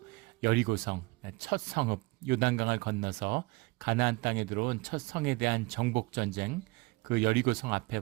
여리고성 첫 성읍 요단강을 건너서 가나안 땅에 들어온 첫 성에 대한 정복 전쟁, 그 여리고성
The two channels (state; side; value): quieter; left; 24.7 dB